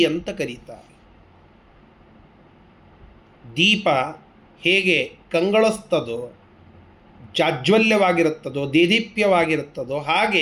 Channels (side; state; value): both; identical; correlation 1.00